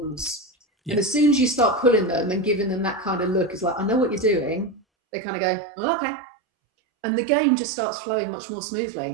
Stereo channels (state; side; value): drops out; left; at 4.8 s